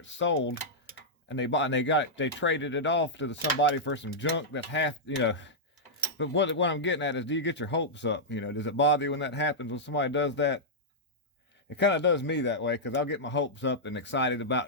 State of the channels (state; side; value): normal; both; correlation -0.09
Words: sold, and they traded it off to somebody for some junk that's half, you know. But what I'm getting at is, do you get your hopes up? You know, does it bother you when that happens, when somebody does that? It kind of does me that way, because I'll get my hopes up and excited about,